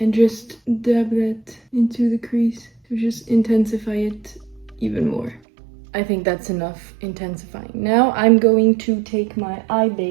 just dab that into the crease to just intensify it even more. I think that's enough intensifying. Now I'm going to take my eye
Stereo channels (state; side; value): drops out; left; at 5.4 s